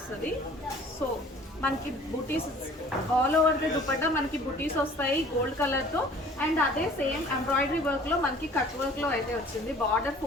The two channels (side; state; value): both; normal; correlation 0.51